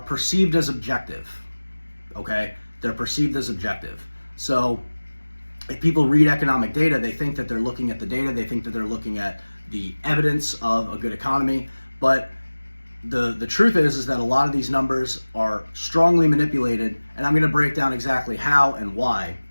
perceived as objective, okay? They're perceived as objective. So if people read economic data, they think that they're looking at the data, they think that they're looking at the evidence of a good economy, but the truth is that a lot of these numbers are strongly manipulated, and I'm going to break down exactly how and why.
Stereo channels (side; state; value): both; inverted; correlation -1.00